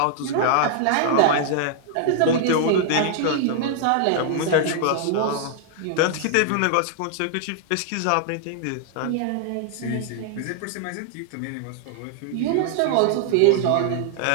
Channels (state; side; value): different; both; correlation -0.01